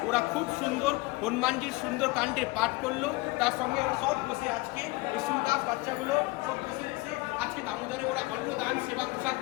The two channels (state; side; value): quieter; right; 22.5 dB